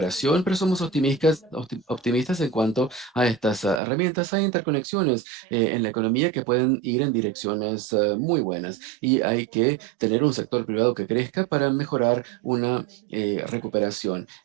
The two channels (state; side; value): drops out; left; at 3.8 s